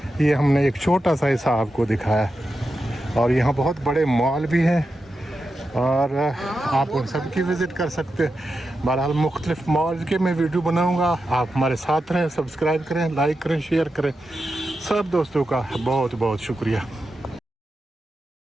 ये हमने एक छोटा सा हिस्सा आपको दिखाया। और यहाँ बहुत बड़े मॉल भी हैं और आप उन सब की विज़िट कर सकते हैं। बहरहाल मुख्तलिफ मॉल के मैं वीडियो बनाऊँगा। आप हमारे साथ रहें, सब्सक्राइब करें, लाइक करें, शेयर करें। सब दोस्तों का बहुत बहुत शुक्रिया।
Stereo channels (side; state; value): both; normal; correlation 0.89